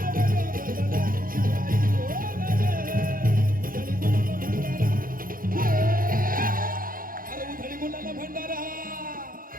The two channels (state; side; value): late; left; 0.41 ms